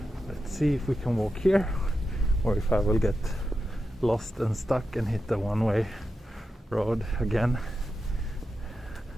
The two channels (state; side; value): normal; both; correlation 0.89